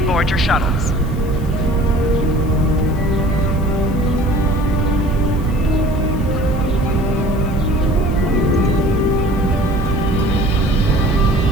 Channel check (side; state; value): left; noise; hiss, 24 dB below the sound